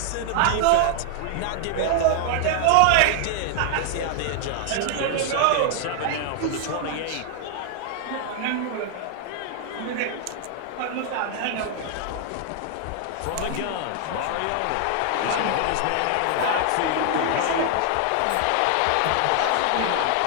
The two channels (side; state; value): both; different; correlation 0.00